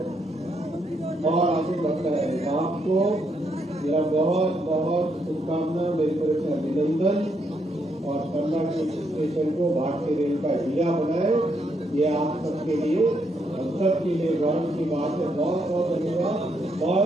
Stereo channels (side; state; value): both; normal; correlation 0.76